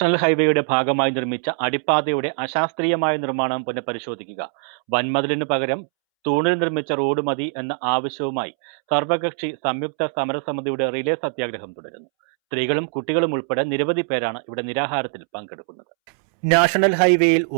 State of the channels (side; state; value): left; silent; 64 dB below the other